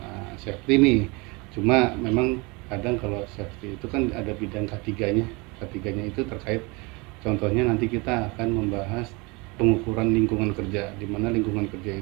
safety nih. Cuma memang kadang kalau safety itu kan ada bidang ketiganya. Ketiganya itu terkait contohnya nanti kita akan membahas pengukuran lingkungan kerja, di mana lingkungan kerja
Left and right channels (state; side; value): quieter; left; 27.2 dB